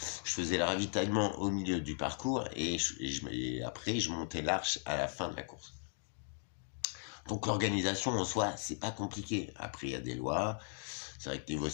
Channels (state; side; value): silent; right; digital silence